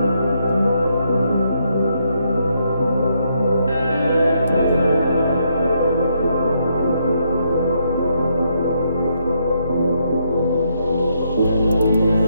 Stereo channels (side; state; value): both; inverted; correlation -0.76